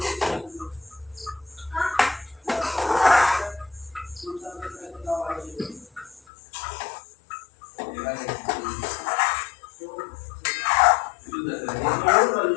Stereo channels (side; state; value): right; drops out; at 6.2 s